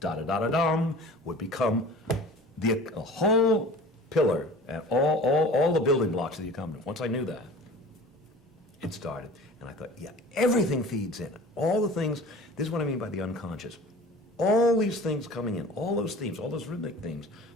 would become the a whole pillar and all the building blocks of the accompaniment, once I knew that, it started. And I thought, yeah, everything feeds in. All the things, this is what I mean by the unconscious. All these things coming in, all those themes, all those rhythmic themes,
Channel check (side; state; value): both; normal; correlation 0.42